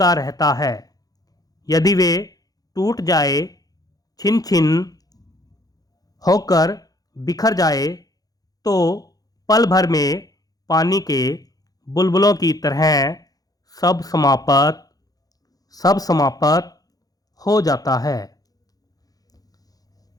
रहता है। यदि वे टूट जाए, छिन छिन होकर बिखर जाए, तो पल भर में पानी के बुलबुलों की तरह सब समाप्त हो जाता है।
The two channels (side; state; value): right; late; 0.18 ms